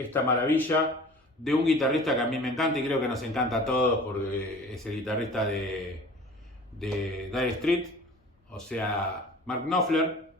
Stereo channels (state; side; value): normal; both; correlation 0.44